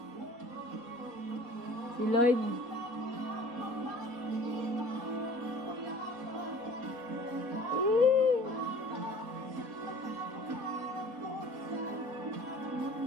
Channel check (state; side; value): late; left; 4.2 ms